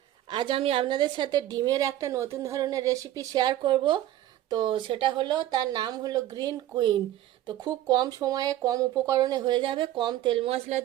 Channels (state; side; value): quieter; left; 13.4 dB